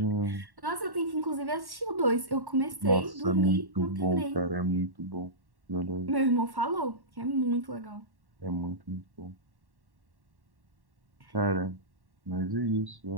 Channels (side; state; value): left; late; 1.1 ms